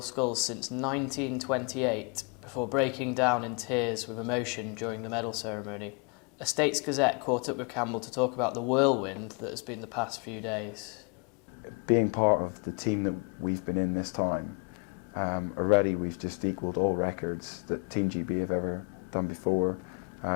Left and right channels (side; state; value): right; quieter; 34.3 dB